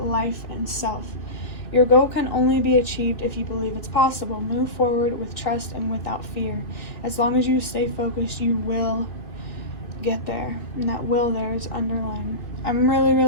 and self. Your goal can only be achieved if you believe it's possible. Move forward with trust and without fear. As long as you stay focused, you will get there. And that will there is underlined. I'm really,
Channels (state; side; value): late; right; 2.8 ms